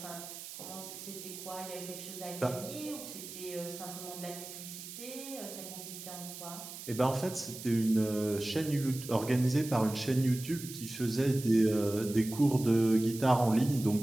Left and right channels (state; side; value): noise; right; hiss, 12 dB below the sound